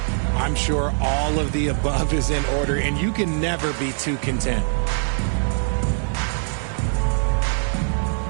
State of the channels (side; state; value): left; silent; 58 dB below the other